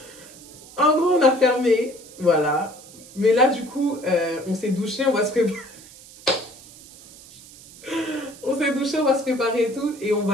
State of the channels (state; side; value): noise; right; hiss, 20 dB below the sound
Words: en gros, on a fermé, voilà. Mais là, du coup, on s'est douché, on va se préparer. On s'est douché, on va se préparer et tout. Et on va